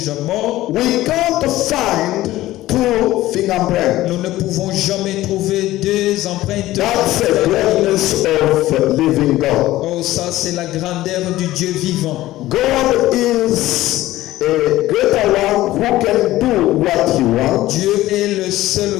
morts, we can't find two fingerprints. nous ne pouvons jamais trouver deux empreintes. That's the greatness of living God. Oh, ça c'est la grandeur du Dieu vivant. God is a greater one who can do what he wants, Dieu est le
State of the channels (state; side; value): quieter; right; 16.1 dB